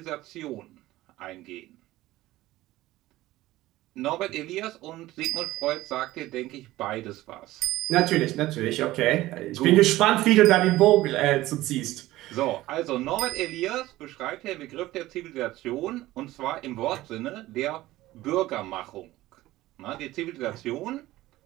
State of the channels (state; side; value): quieter; left; 16.8 dB